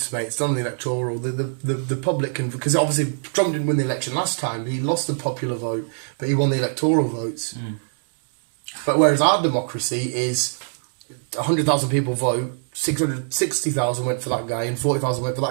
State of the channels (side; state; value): left; silent; digital silence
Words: mate. It's done on the electoral. The public can... Because obviously Trump didn't win the election last time. He lost the popular vote, but he won the electoral votes. But whereas our democracy is 100,000 people vote, 660,000 went for that guy, and 40,000 went for